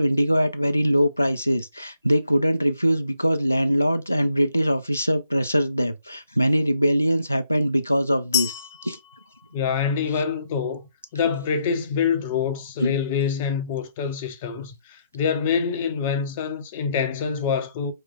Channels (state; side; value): inverted; both; correlation -0.76